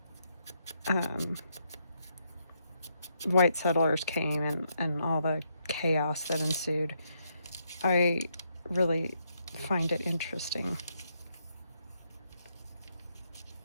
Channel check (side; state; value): both; inverted; correlation -0.77